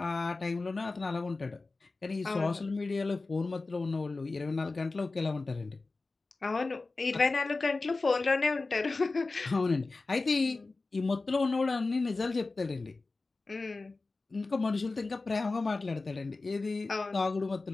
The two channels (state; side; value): quieter; right; 3.6 dB